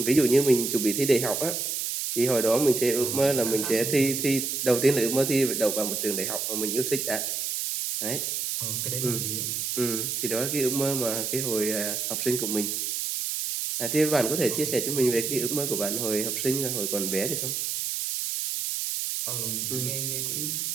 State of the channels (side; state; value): right; noise; hiss, 2 dB below the sound